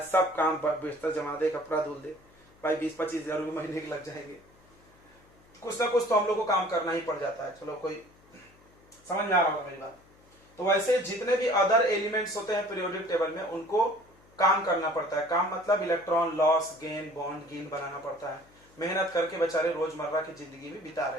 सब काम, बिस्तर जमा दे, कपड़ा धुल दे। भाई 20-25 हजार रुपये महीने के लग जाएंगे। कुछ ना कुछ तो हम लोग को काम करना ही पड़ जाता है। चलो, कोई समझ में आ रहा होगा मेरी बात? तो वैसे जितने भी अदर एलिमेंट्स होते हैं पीरियोडिक टेबल में, उनको काम करना पड़ता है। काम मतलब electron loss, gain, bond gain बनाना पड़ता है। मेहनत करके बेचारे रोजमर्रा की जिंदगी में बिता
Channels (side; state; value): left; noise; hum, 28 dB below the sound